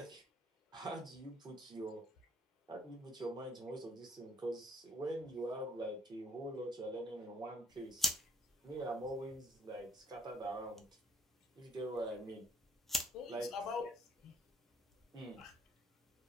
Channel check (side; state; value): both; normal; correlation 0.64